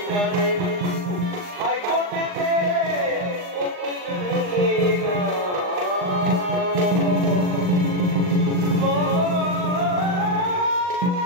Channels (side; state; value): left; late; 39 ms